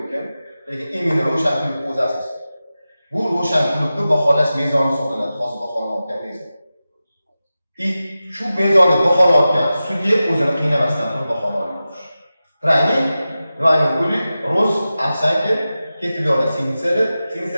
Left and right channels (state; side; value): inverted; both; correlation -0.94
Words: Lekin endi ro'shanqulov o'zi asosan. Bu ro'shanqullovni baholash mezoni hisoblanadi, hozir baholanayotgan mezon. Shu mezonni baholayotgan sudya o'zini qiynamasdan turib baholaydi. Trayning Vayning puli, roz, afsanki, ketib yo'lda